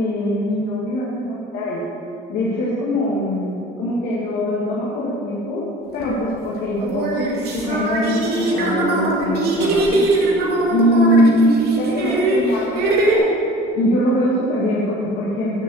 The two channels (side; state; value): both; normal; correlation 0.44